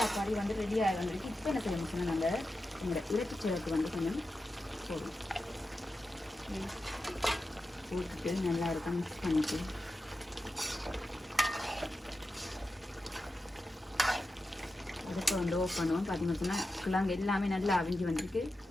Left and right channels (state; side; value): normal; both; correlation 0.91